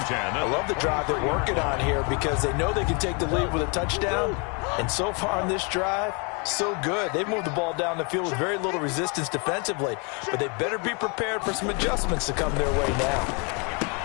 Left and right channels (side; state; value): right; quieter; 33.7 dB